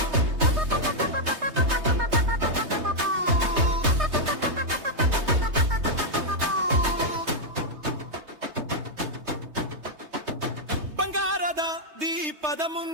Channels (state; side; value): late; left; 3.2 ms